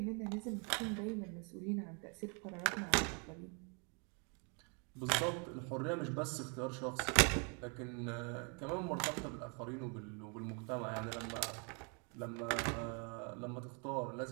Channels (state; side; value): quieter; left; 35.5 dB